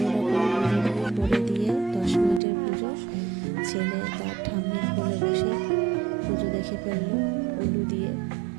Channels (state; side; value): drops out; left; at 2.4 s